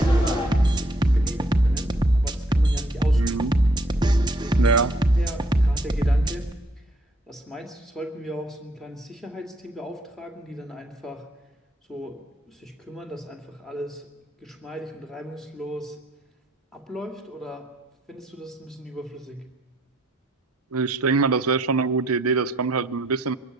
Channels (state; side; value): normal; both; correlation 0.68